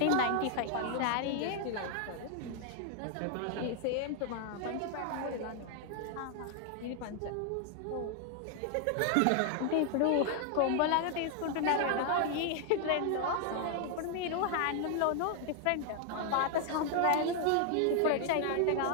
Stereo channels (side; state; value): both; different; correlation 0.00